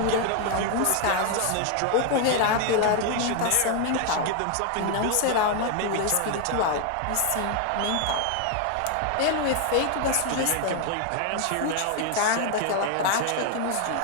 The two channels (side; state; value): both; different; correlation 0.01